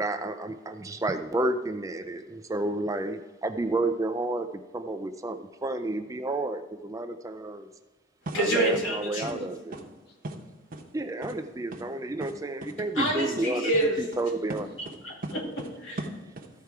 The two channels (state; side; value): normal; both; correlation 0.42